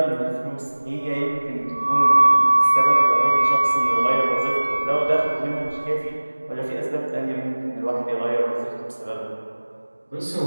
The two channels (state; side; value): inverted; both; correlation -1.00